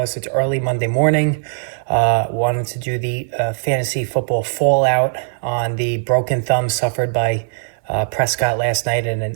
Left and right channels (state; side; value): silent; left; 58 dB below the other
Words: It's early Monday morning. Wanted to do the fantasy football fallout on the broken thumb suffered by Prescott last night in an